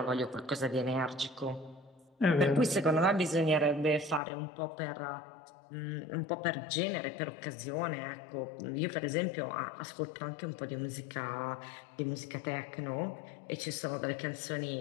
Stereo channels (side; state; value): right; drops out; at 4.2 s